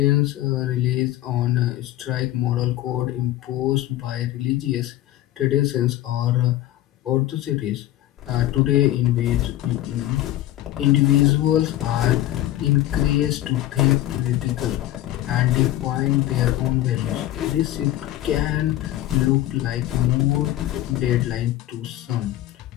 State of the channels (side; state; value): right; quieter; 14.4 dB